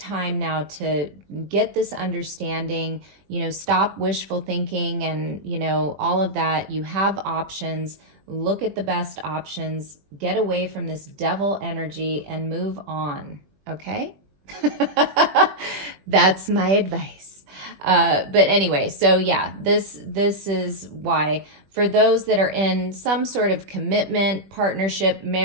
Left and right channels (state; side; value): late; left; 21 ms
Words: now to get this understanding, you know, stop wishful thinking and, you know, all of that. You have options. Look at the best options, get away from this devil energy and move on. Okay. That's my advice. But anyway, so yeah, this is why for those that are in some sort of commitment, partnership,